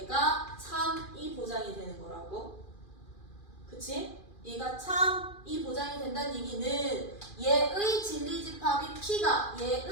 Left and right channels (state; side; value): late; right; 2.4 ms